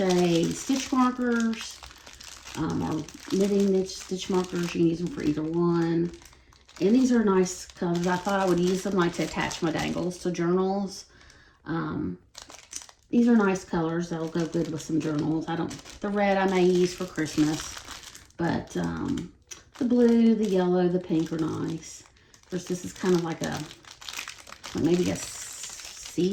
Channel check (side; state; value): both; identical; correlation 1.00